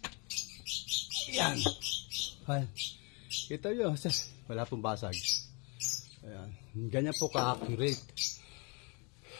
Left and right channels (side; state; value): right; quieter; 32.4 dB